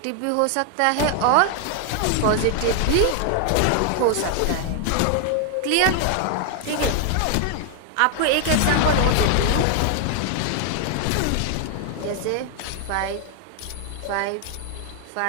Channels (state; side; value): different; both; correlation 0.00